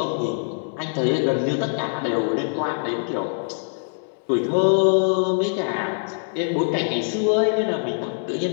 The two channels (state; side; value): silent; right; 63 dB below the other